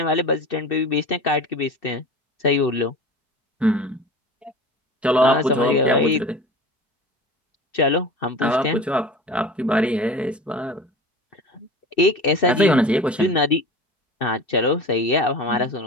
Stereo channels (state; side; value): normal; both; correlation 0.35